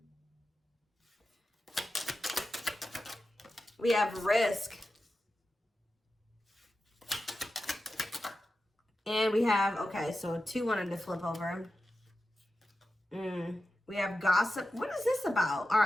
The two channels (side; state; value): both; normal; correlation 0.92